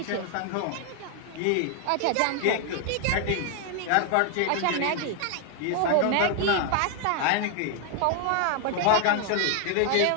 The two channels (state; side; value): different; both; correlation 0.00